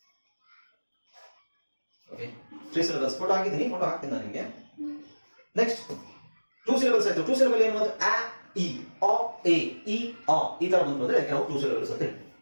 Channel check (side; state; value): both; inverted; correlation -1.00